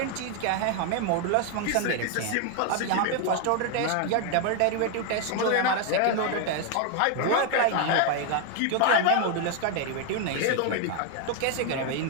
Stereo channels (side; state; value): both; different; correlation 0.01